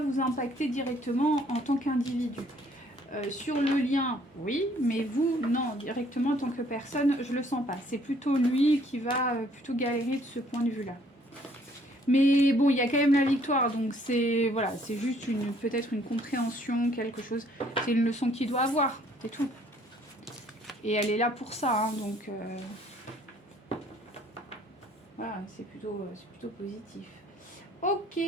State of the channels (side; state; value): both; normal; correlation 0.62